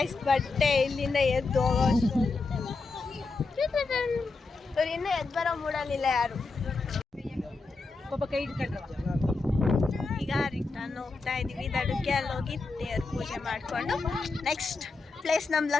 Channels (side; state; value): right; quieter; 3.9 dB